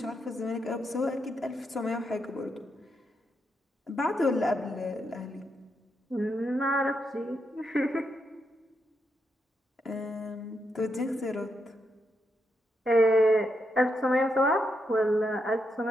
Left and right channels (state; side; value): normal; both; correlation 0.81